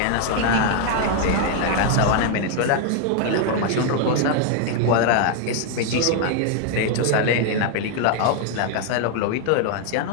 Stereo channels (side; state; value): both; different; correlation 0.00